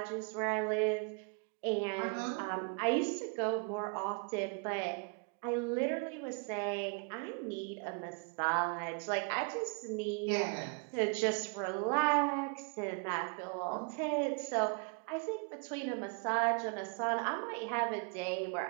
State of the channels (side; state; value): left; quieter; 35.7 dB